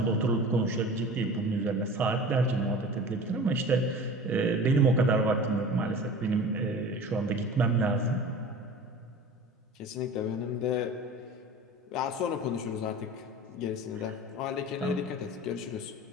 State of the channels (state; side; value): normal; both; correlation 0.37